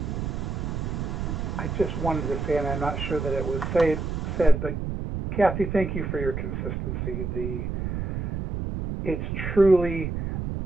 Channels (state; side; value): noise; right; rumble, 3 dB below the sound